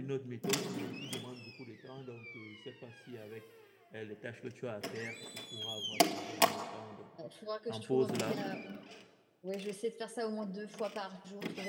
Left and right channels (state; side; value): identical; both; correlation 1.00